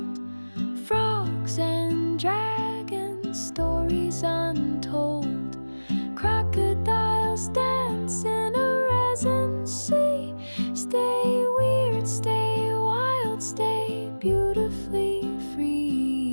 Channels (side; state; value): both; inverted; correlation -1.00